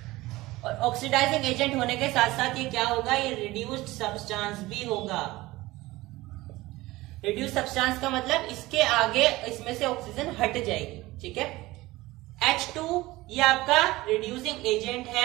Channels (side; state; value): left; quieter; 19.1 dB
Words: और ऑक्सीडाइजिंग एजेंट होने के साथ साथ ये क्या होगा? ये रिड्यूस्ड सब्सटेंस भी होगा। रिड्यूस सब्सटेंस का मतलब इसके आगे इसमें से ऑक्सीजन हट जाएगी। ठीक है, H2 ये आपका रिड्यूसिंग एजेंट